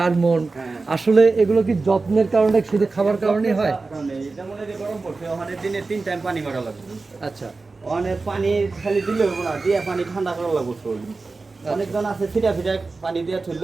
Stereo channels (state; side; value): quieter; left; 3.8 dB